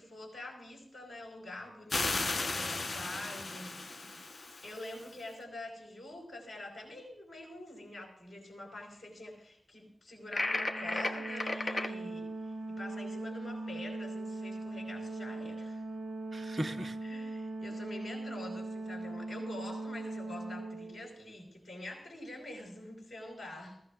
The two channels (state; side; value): normal; both; correlation 0.90